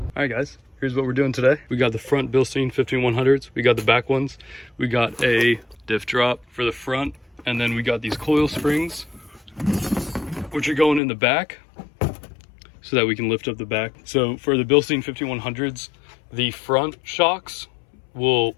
Alright guys, here's what we're doing today. We got the front Bilstein 5100s, we got the back ones, we got a diff drop for the front, and then we got these coil springs, which are going in the back, so that we can lift up the back. So for the Bilstein 5100s, the front shocks will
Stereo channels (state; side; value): drops out; right; at 11.0 s